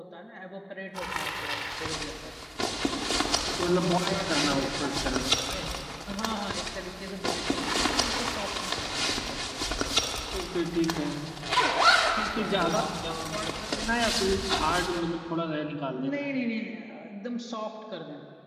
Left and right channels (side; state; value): both; identical; correlation 1.00